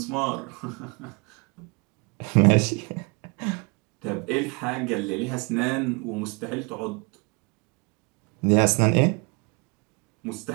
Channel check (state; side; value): quieter; left; 30.8 dB